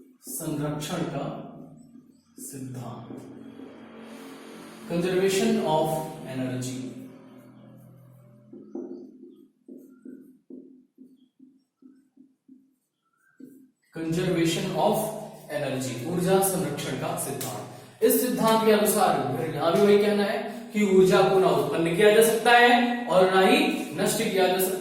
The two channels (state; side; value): identical; both; correlation 1.00